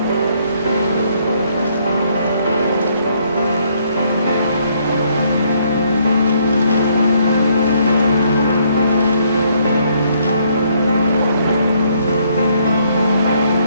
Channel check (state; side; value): inverted; both; correlation -0.68